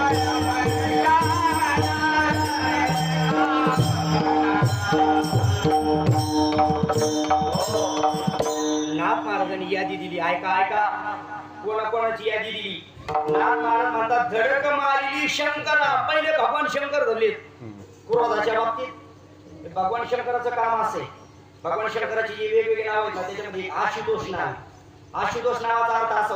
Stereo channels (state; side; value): identical; both; correlation 1.00